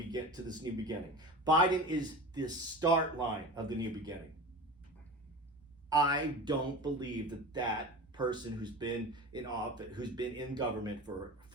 new beginning. Biden is the start line of the new beginning. I don't believe that person who's been in office, who's been in government for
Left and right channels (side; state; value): both; normal; correlation 0.32